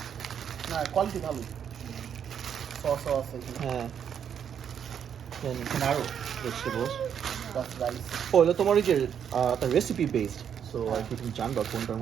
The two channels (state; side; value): quieter; left; 8.3 dB